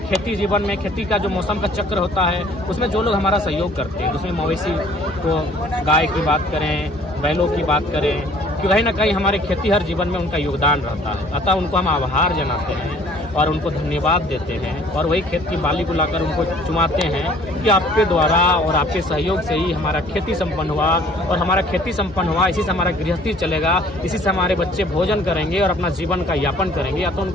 खेती जीवन में, खेती का जो मौसम का चक्र होता है, उसमें जो लोग हमारा सहयोग करते हैं, उसमें मवेशी को, गाय की बात करें, बैलों की बात करें, कि कहीं ना कहीं हमारे खेती हर जीवन में उनका योगदान रहता है। अतः उनको हम आभार जनाते हैं और उनको धन्यवाद देते हैं, और वही खेत की बाली को लाकर उनको चुमाते हैं कि आपके द्वारा और आपके सहयोग से ही हमारा खेती संपन्न हुआ, और हमारा खेती संपन्न हुआ, इसी से हमारा गृहस्थी चलेगा, इसी से हमारे बच्चे भोजन करेंगे और अपना जीवन का यापन करेंगे। या तो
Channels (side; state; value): both; normal; correlation 0.55